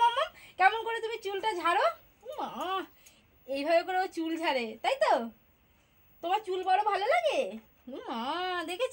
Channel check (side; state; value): both; identical; correlation 1.00